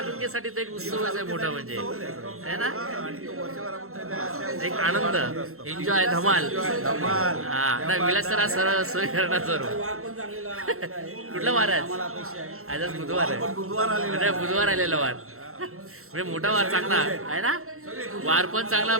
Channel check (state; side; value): late; left; 0.63 ms